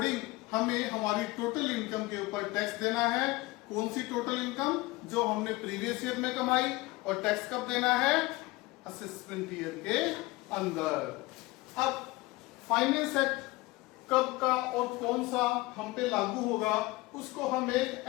हमें हमारी टोटल इनकम के ऊपर टैक्स देना है। कौन सी टोटल इनकम? जो हमने प्रीवियस ईयर में कमाई। और टैक्स कब देना है? असेसमेंट ईयर के अंदर। अब फाइनेंस एक्ट कब का और कौन सा हम पे लागू होगा उसको हम एक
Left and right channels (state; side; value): quieter; right; 21.0 dB